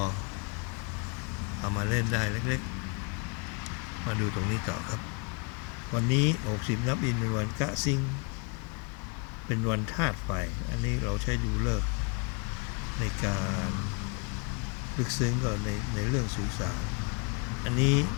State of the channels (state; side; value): quieter; right; 32.9 dB